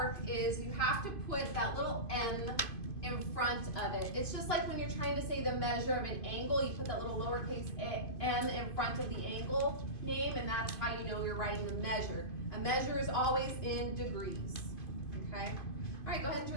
is you have to put that little M in front of it. It's just like when you're trying to say the measure of an angle, you put that little lowercase m in front of the angle name, and that's how you know you're writing the measure. A measure is always in degrees, okay? All right, go ahead and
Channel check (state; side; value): late; right; 2.5 ms